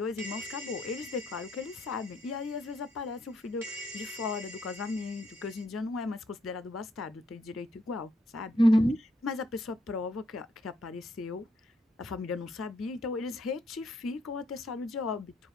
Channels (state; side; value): normal; both; correlation 0.73